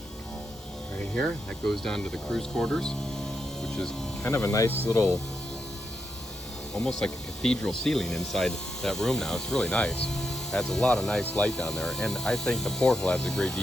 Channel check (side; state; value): both; normal; correlation 0.84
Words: right here. That goes down to the cruise quarters, which is kind of a nice little, almost like a cathedral ceiling inside that room now. It's really nice. Adds a lot of nice light down there, and I think the porthole adds a great